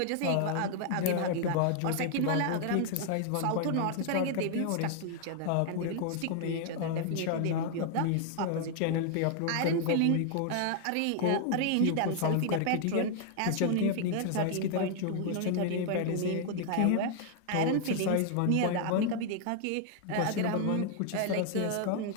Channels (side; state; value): both; different; correlation 0.00